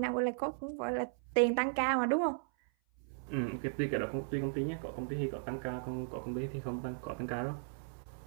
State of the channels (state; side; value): silent; left; 54 dB below the other